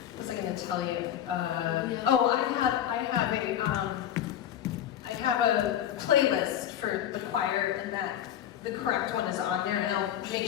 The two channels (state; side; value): quieter; right; 10.8 dB